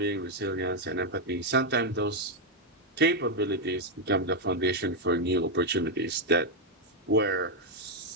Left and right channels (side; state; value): both; normal; correlation 0.01